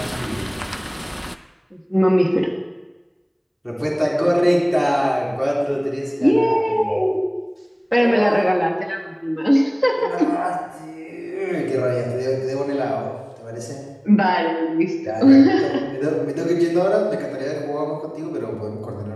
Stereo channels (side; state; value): both; identical; correlation 1.00